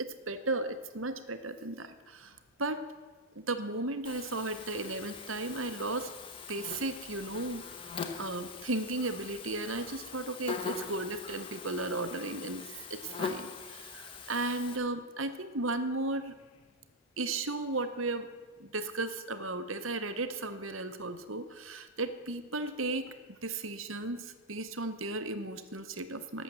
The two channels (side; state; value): both; normal; correlation 0.01